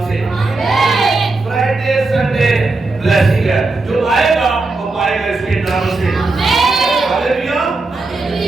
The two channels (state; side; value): quieter; left; 3.4 dB